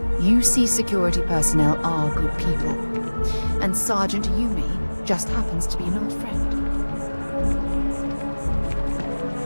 UC security personnel are good people. And Sergeant Yumi just happens to be an old friend.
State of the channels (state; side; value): inverted; both; correlation -1.00